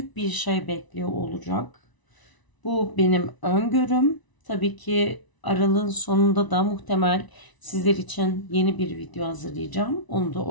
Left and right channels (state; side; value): late; right; 1.0 ms